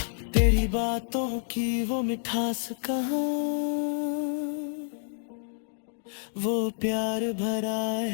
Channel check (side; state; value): right; silent; digital silence